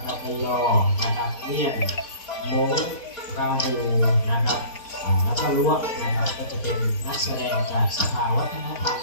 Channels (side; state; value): right; late; 4.4 ms